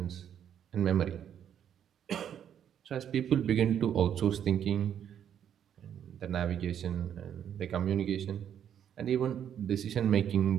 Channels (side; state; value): left; quieter; 9.3 dB